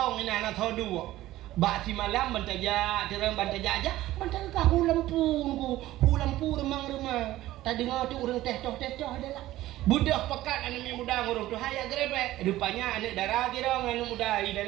ini anak tahu dua. Bak si malam bantaja, terang bantaja aja, bantaja kah lampu remang. Tadi dengar tu orang teh adalah. Budak pekat anak muda orang tu haya grebek. Rupanya anak darah kira anak muda di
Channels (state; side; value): quieter; left; 15.6 dB